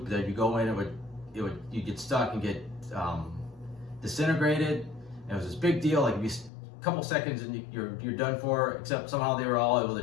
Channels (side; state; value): right; drops out; at 6.5 s